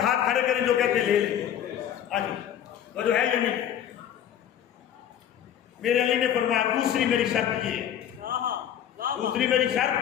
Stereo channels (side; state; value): right; quieter; 10.1 dB